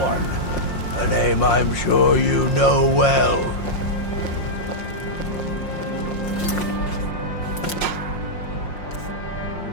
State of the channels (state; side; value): late; right; 5.6 ms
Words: A name I'm sure you know well.